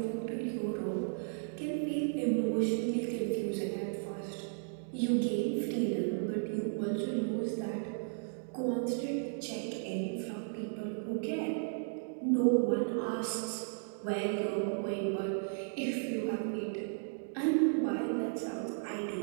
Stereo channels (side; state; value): left; silent; digital silence